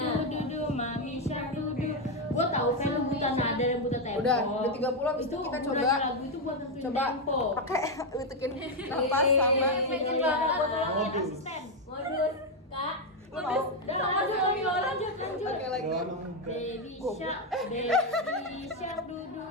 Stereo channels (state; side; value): normal; both; correlation 0.03